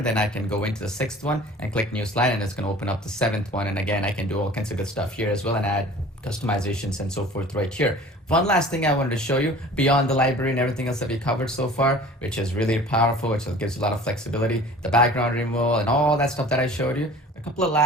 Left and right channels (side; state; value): both; normal; correlation 0.45